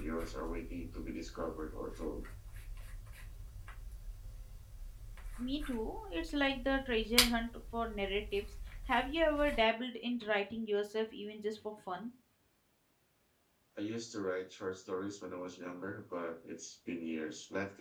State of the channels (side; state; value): both; identical; correlation 1.00